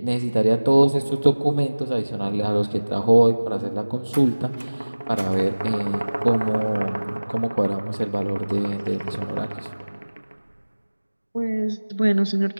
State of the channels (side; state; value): both; inverted; correlation -1.00